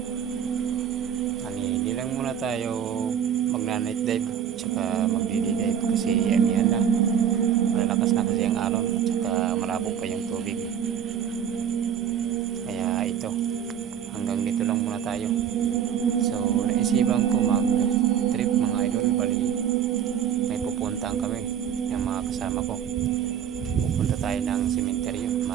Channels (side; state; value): left; quieter; 8.7 dB